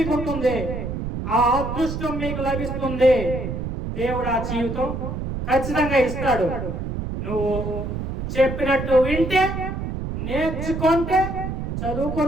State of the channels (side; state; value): right; noise; rumble, 5 dB below the sound